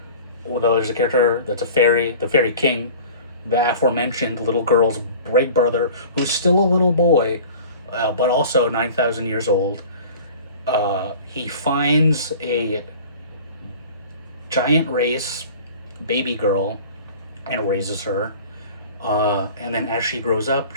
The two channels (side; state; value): both; inverted; correlation -0.42